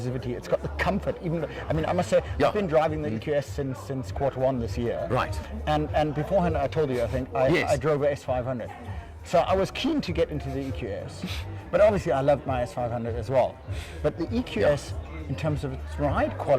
it's got the comfort. Even I mean, I must say, I've been driving the EQS since Q1 this year. Right. And beforehand, I told you, I think I drove a S500. So I was keen to get into the EQS, but obviously I loved my S500 as well. But the EQS, in terms of its ride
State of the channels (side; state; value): both; identical; correlation 1.00